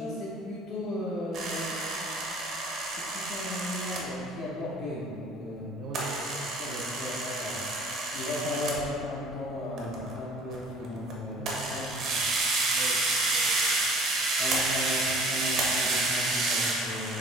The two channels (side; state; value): both; normal; correlation 0.50